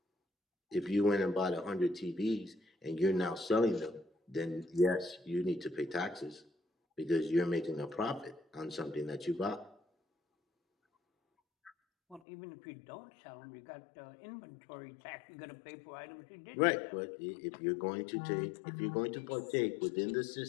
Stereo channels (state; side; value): drops out; right; at 12.2 s